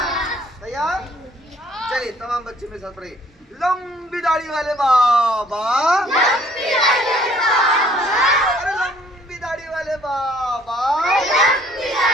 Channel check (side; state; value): both; normal; correlation 0.59